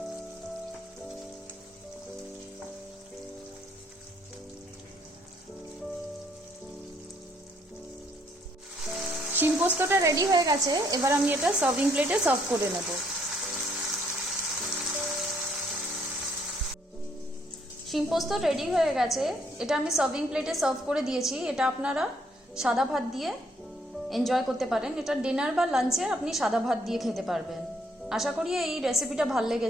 শিম পোস্তটা রেডি হয়ে গেছে, এবার আমি এটা সার্ভিং প্লেটে সার্ভ করে নেব। শিম পোস্ত রেডি হয়ে গেছে, এটা আমি সার্ভিং প্লেটে সার্ভ করে দিয়েছি। এটা আপনারা সাদা ভাত দিয়ে এনজয় করতে পারেন। এটা ডিনার বা লাঞ্চে আপনি সাদা ভাত দিয়ে খেতে পারবেন। আশা করি এই রেসিপিটা ভালো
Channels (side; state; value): both; normal; correlation 0.68